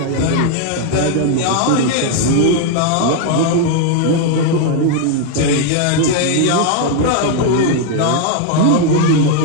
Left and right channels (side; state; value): both; different; correlation 0.01